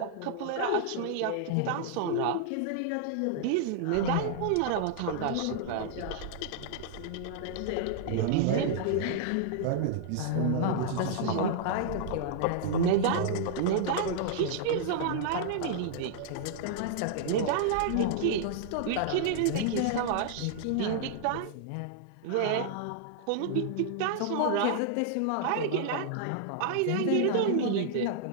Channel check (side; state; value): both; different; correlation -0.01